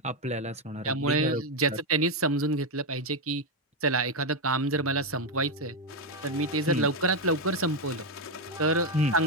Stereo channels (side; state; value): both; normal; correlation 0.05